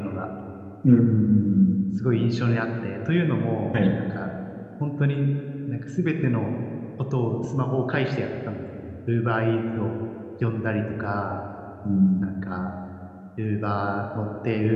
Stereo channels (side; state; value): both; identical; correlation 1.00